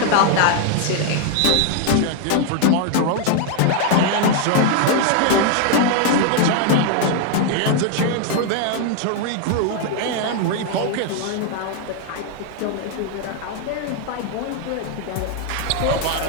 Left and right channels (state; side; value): different; both; correlation 0.00